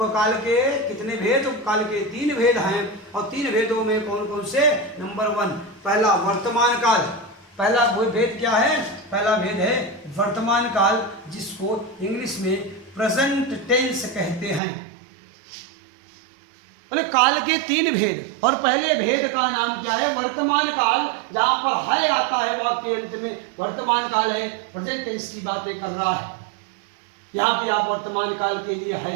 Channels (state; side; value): drops out; left; at 14.6 s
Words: काल के कितने भेद? काल के 3 भेद हैं। और 3 भेदों में कौन कौन से? नंबर 1, पहला वर्तमान काल। पहला भेद क्या है? पहला भेद है वर्तमान काल, जिसको इंग्लिश में प्रेजेंट टेंस कहते हैं। बोले काल के 3 भेद, और पहले भेद का नाम क्या है? वर्तमान काल। जहां पर है आता है वाक्य के अंत में, वर्तमान काल है, प्रेजेंट टेंस की बातें कर रहा है। यहां भी आप वर्तमान काल के लिए